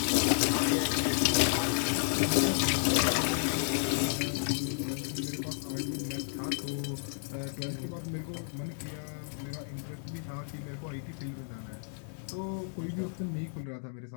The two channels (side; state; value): right; silent; 56 dB below the other